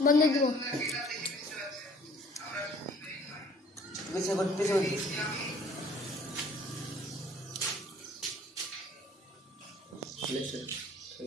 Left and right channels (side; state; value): both; normal; correlation 0.55